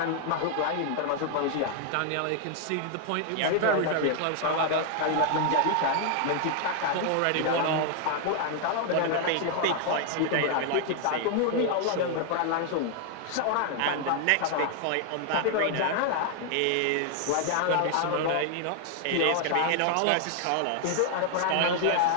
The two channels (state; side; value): different; both; correlation 0.00